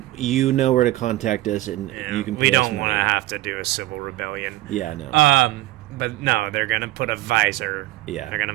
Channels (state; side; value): quieter; left; 17.1 dB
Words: you know where to contact us, and you can pay we us don't money. want to have to do a civil rebellion. Yeah, no. But no, they're gonna put a visor. Yeah. They're gonna